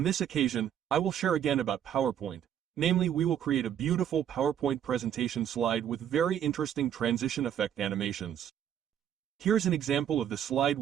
this occasion, I will share again about PowerPoint. Namely, we will create a beautiful PowerPoint presentation slide with very interesting transition effect animations. Here's an example of the slide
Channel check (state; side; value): quieter; left; 9.7 dB